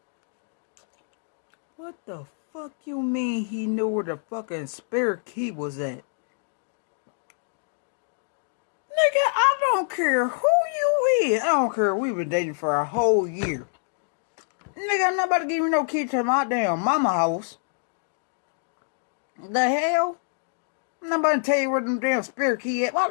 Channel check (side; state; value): right; silent; digital silence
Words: What the fuck you mean he knew where the fucking spare key was at? Nigga, I don't care who you is. I don't care. We've been dating for a whole year. Nigga, I'm not about to give you no key to my damn mama house. The hell? I'm not about to tell you where them damn spare key at. Why